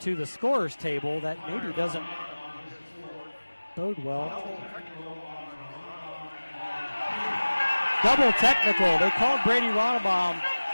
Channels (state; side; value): inverted; both; correlation -1.00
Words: the scorer's table that maybe doesn't bode well. Double technical. They called Brady Ronbaum